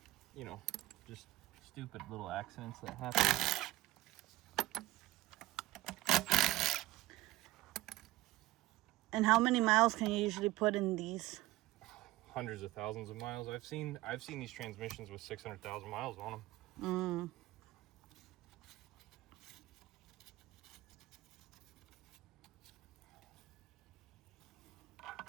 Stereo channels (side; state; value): left; quieter; 17.7 dB